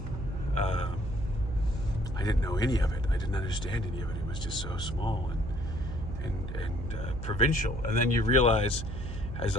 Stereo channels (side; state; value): right; noise; hum, 7 dB below the sound